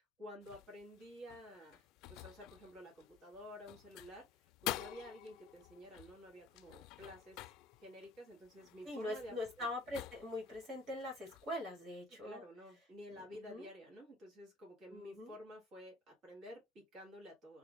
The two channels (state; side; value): quieter; right; 3.1 dB